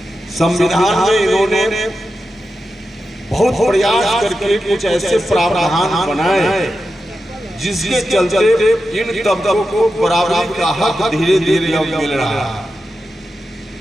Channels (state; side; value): normal; both; correlation 0.90